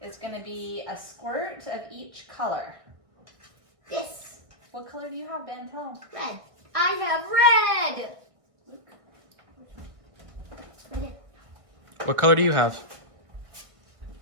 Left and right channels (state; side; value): late; left; 1.6 ms